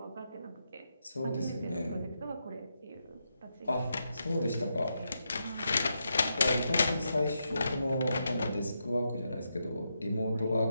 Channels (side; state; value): both; inverted; correlation -0.84